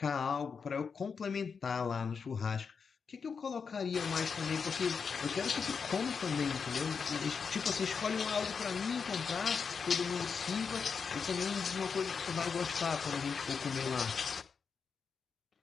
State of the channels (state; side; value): quieter; right; 5.8 dB